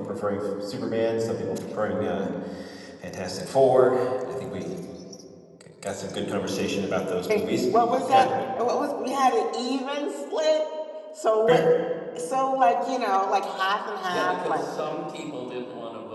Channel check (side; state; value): both; identical; correlation 1.00